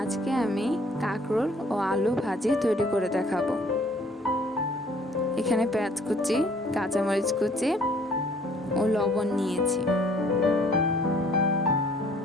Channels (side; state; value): both; normal; correlation 0.58